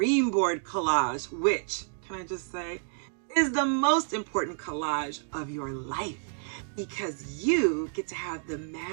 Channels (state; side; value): silent; left; digital silence